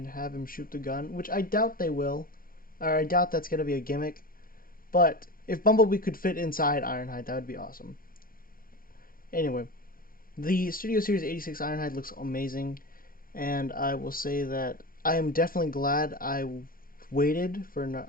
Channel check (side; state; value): right; late; 0.42 ms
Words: have him shoot the gun, which I doubt they will, or I doubt that's gonna be a gimmick. But if Bumblebee could fit inside Ironhide, that would be awesome. Anyway, the Studio Series 86 Ironhide looks amazing, and I will say that I am definitely glad I waited for